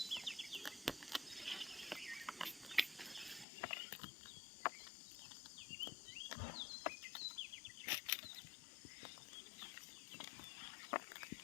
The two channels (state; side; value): drops out; right; at 3.5 s